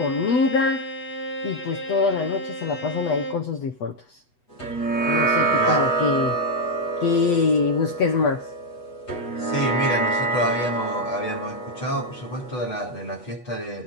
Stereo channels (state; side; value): late; right; 8.1 ms